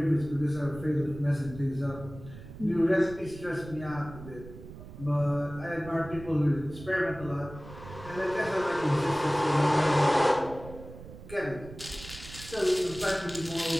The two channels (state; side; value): noise; right; rumble, 15 dB below the sound